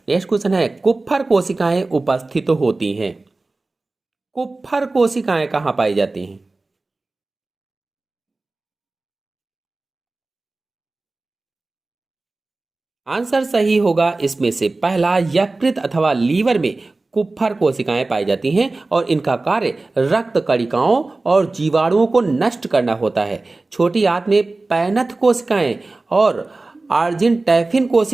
नेक्स्ट क्वेश्चन है, कुप्फर कोशिकाएं उपस्थित होती हैं। कुप्फर कोशिकाएं कहां पाई जाती हैं? आंसर सही होगा इसमें से पहला, यकृत अथवा लीवर में कुप्फर कोशिकाएं पाई जाती हैं और इनका कार्य रक्त कणिकाओं और जीवाणुओं को नष्ट करना होता है। छोटी आंत में पैनथ कोशिकाएं और आर्जिनटैफिन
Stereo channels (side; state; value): left; quieter; 3.3 dB